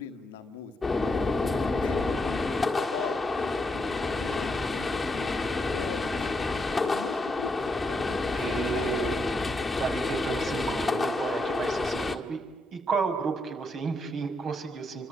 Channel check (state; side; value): normal; both; correlation 0.81